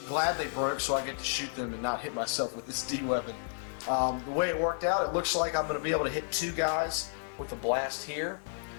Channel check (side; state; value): right; silent; digital silence